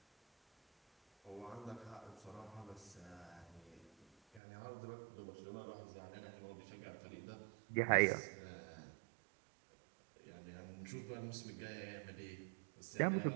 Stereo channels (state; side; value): drops out; left; at 4.4 s